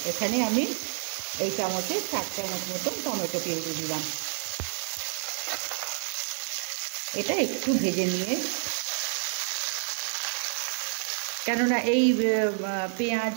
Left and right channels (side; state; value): left; silent; 59 dB below the other